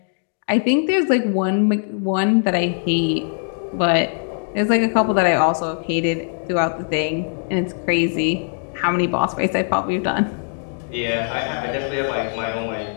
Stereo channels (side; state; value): right; silent; digital silence